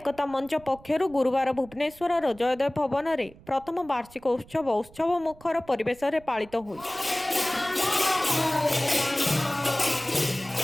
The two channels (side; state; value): right; noise; rumble, 23 dB below the sound